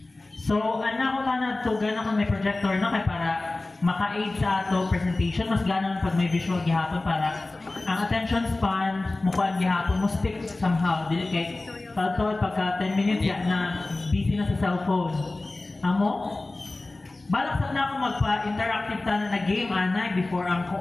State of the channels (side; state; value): right; quieter; 3.0 dB